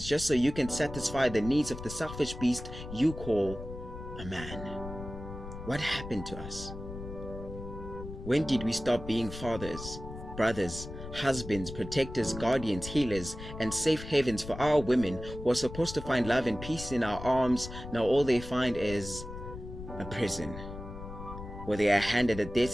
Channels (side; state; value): left; noise; rumble, 11 dB below the sound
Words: just so you can satisfy the needs of the selfish beast you call a man. What happened to us? When did we stop being fathers, brothers, husbands, protectors, guardians, healers, and safe havens for our women who are supposed to find love and peace in our arms? Now all they find is a prison, where they are handed a death